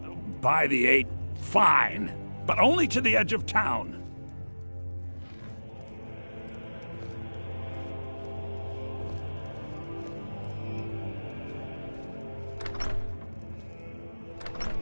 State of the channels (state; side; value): inverted; both; correlation -1.00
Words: by the 8, fine. But only to the edge of town.